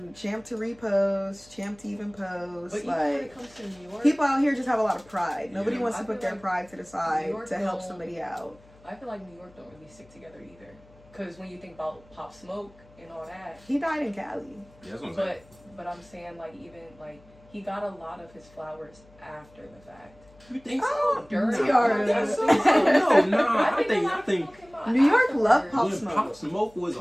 champ to repost, champ to even post. But like even when it comes to New York, people out here just have a lot of pride. Nobody wants to put their pride to the side to help somebody out. I feel like New York don't really stick together either. Because when you think about Pop Smoke and all that, he died in Cali. Yeah, that's what I'm saying. But I'm saying like even like he got a lot of his flowers after the fact. You think so? Oh, during I think so. No, I think New York loved Pop When Smoke. Pop Smoke was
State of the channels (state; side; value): noise; left; hum, 26 dB below the sound